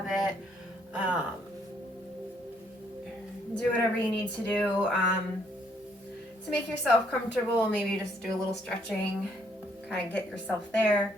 it. Do whatever you need to do to make yourself comfortable. Maybe just do a little stretching, kind of get yourself there.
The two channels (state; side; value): normal; both; correlation 0.69